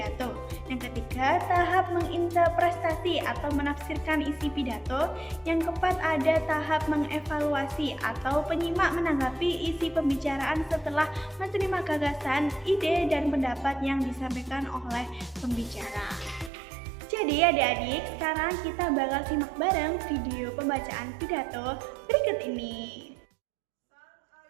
Yang ketiga, tahap menginterpretasi atau menafsirkan isi pidato. Yang keempat, ada tahap mengevaluasi atau penyimak menanggapi isi pembicaraan setelah menerima gagasan, ide, dan pendapat yang disampaikan oleh pembicara. Jadi adik-adik, sekarang kita bakal simak bareng video pembacaan pidato berikut ini.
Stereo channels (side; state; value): left; drops out; at 16.5 s